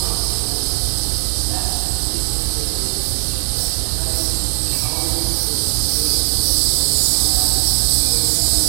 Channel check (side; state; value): left; silent; 67 dB below the other